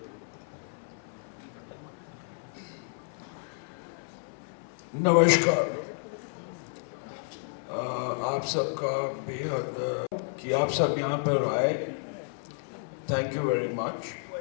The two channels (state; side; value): silent; right; 57 dB below the other